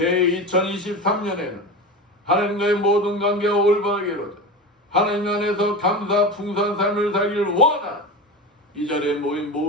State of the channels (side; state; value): both; normal; correlation 0.27